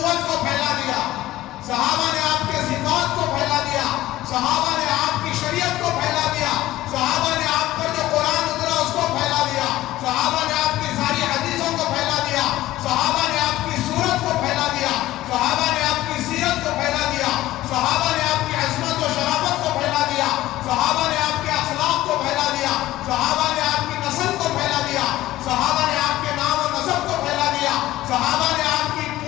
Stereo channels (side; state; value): right; quieter; 15.7 dB